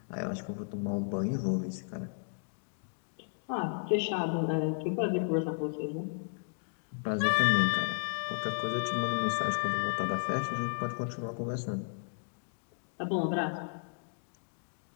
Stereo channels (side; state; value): right; silent; digital silence